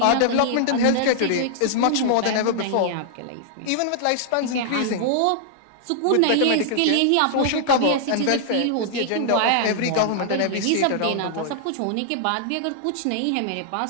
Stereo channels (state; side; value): different; both; correlation -0.01